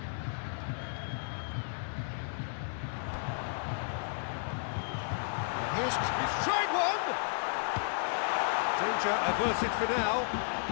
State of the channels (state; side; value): silent; right; digital silence